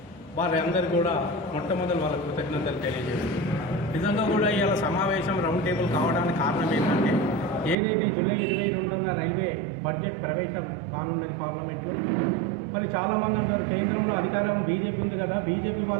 వారందరూ కూడా మొట్టమొదటి వాళ్ళ కృతజ్ఞతలు తెలియజేస్తున్నారు. నిజంగా కూడా ఇవాళ సమావేశం రౌండ్ టేబుల్ కావడానికి కారణం ఏంటంటే ఏదైతే జూలై 22న రైల్వే బడ్జెట్ ప్రవేశం కానున్నది పార్లమెంట్లో. మరి చాలామంది అంటారు కేంద్రంలో అధికారం బీజేపీ ఉంది కదా, బీజేపీ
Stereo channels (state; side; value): drops out; left; at 7.8 s